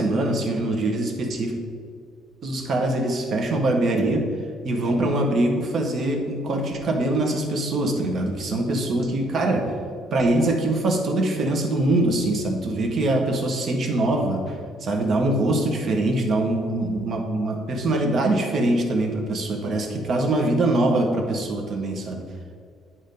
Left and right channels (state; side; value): normal; both; correlation 0.67